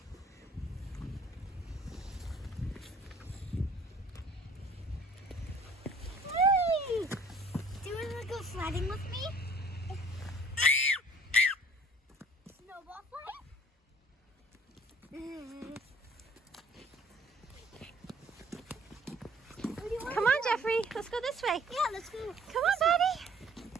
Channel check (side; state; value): both; normal; correlation 0.54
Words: Hey! Do you want to go sledding with me? Snowball fight? Come on, Jeffrey. Let's go this way. Yeah, let's go. Come on, buddy.